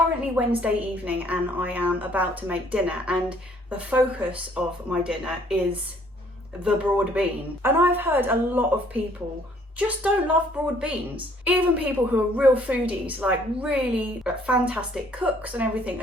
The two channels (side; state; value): both; normal; correlation 0.61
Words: Wednesday evening and I am about to make dinner, and the focus of my dinner is the broad bean. And I've heard a lot of people just don't love broad beans. Even people who are real foodies, like really fantastic cooks and everything,